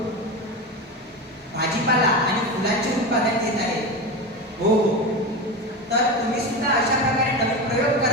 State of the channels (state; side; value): normal; both; correlation 0.21